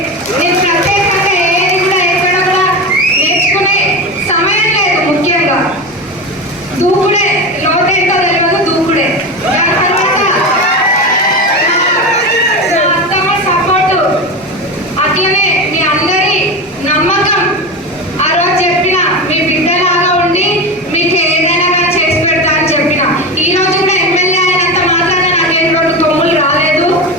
నేను ప్రత్యేకంగా ఏది కూడా ఎక్కడ కూడా నేర్చుకునే సమయం లేదు. ముఖ్యంగా దూకుడే, లోతేంటో తెలియదు, దూకుడే. దాని తర్వాత నా అత్తమ్మ సపోర్టు, అట్లనే మీ అందరి నమ్మకం. ఆ రోజు చెప్పిన మీ బిడ్డలాగా ఉండి మీకు ఏదైనా కానీ చేసి పెడతా అని చెప్పిన. ఈ రోజు కూడా ఎమ్మెల్యే అయినంత మాత్రాన నాకేం 2 కొమ్ములు రాలేదు.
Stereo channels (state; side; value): normal; both; correlation 0.22